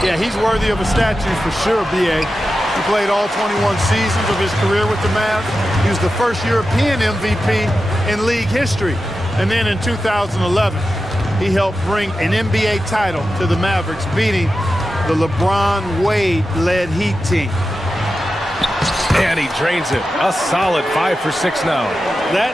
Yeah, he's worthy of a statue for sure, B.A. He played all 21 seasons of his career with the Mavs. He was the first European MVP in league history. And then in 2011, he helped bring an NBA title to the Mavericks, beating the LeBron Wade-led Heat team. And he drains it. A solid 5 for 6 now.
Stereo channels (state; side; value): normal; both; correlation 0.92